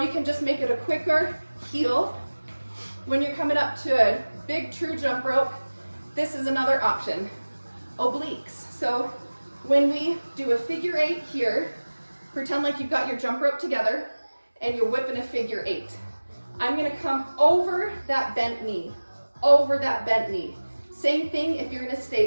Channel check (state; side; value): inverted; both; correlation -1.00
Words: can just make it a quicker heel. When you're coming up to a big true jump rope, this is another option, obliques. So when we do a figure 8 here, pretend like you've got your jump rope together and you're whipping a figure 8. I'm gonna come over that bent knee, over that bent knee. Same thing if you're gonna